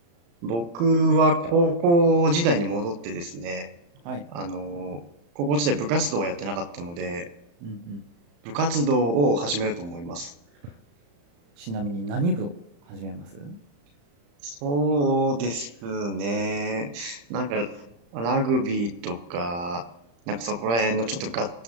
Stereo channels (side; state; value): left; late; 35 ms